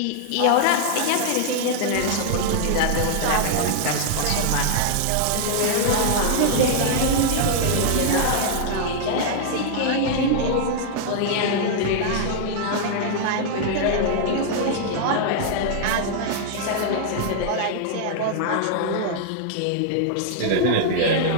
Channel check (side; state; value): both; different; correlation -0.01